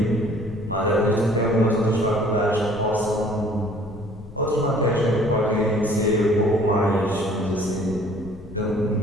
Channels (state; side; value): noise; left; rumble, 18 dB below the sound